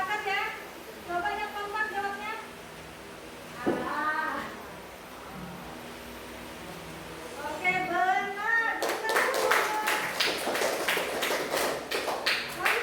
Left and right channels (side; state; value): both; identical; correlation 1.00